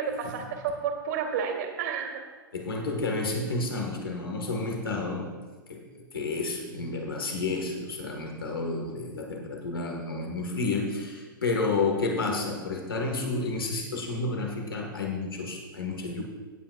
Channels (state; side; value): normal; both; correlation -0.09